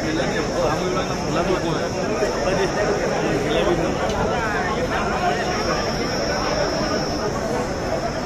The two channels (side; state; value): both; identical; correlation 1.00